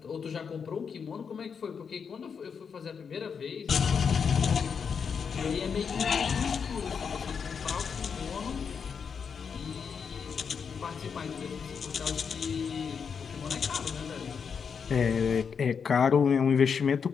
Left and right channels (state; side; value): quieter; right; 6.4 dB